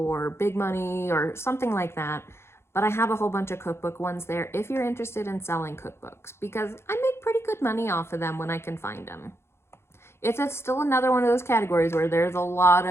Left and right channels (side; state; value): right; late; 0.12 ms